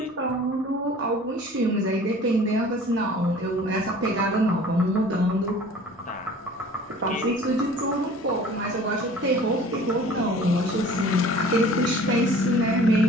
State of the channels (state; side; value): normal; both; correlation 0.47